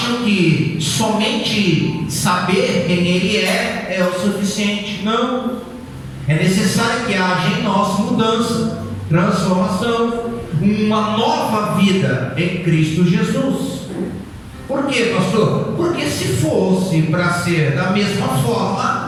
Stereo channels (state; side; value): identical; both; correlation 1.00